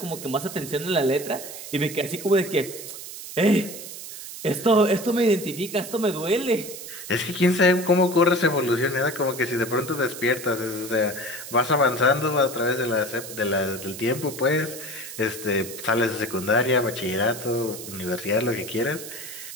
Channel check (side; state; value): right; noise; hiss, 11 dB below the sound